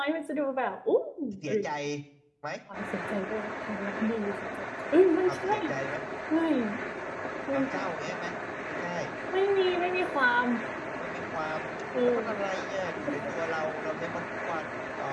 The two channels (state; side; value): identical; both; correlation 1.00